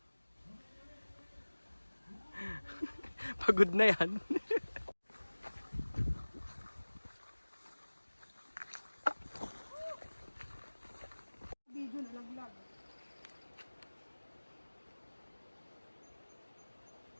Pagod na yan. Video nalaglag.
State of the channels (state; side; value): inverted; both; correlation -1.00